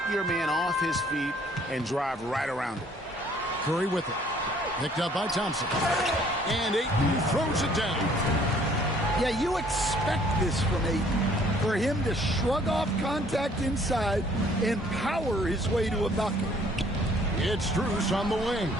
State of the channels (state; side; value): normal; both; correlation 0.60